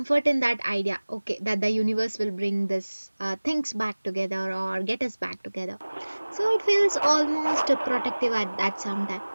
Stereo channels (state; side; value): inverted; both; correlation -1.00